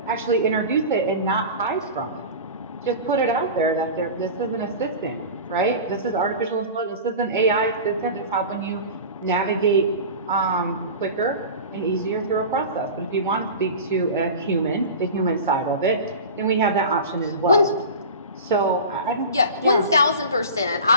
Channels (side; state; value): both; inverted; correlation -0.32